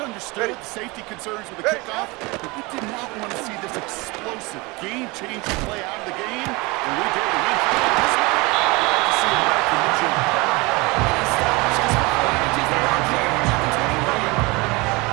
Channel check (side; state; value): left; quieter; 24.9 dB